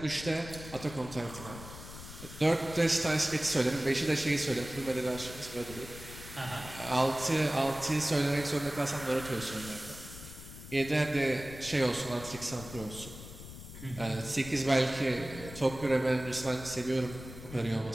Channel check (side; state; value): left; noise; rumble, 13 dB below the sound